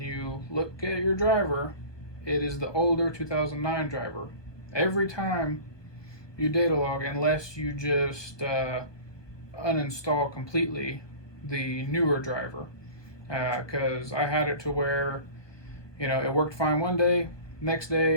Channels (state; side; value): late; right; 1.2 ms